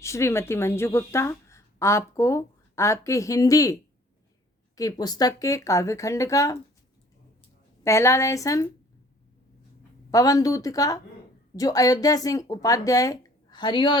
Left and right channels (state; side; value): normal; both; correlation 0.55